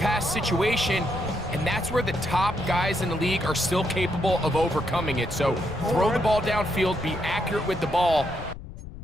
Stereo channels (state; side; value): noise; left; rumble, 12 dB below the sound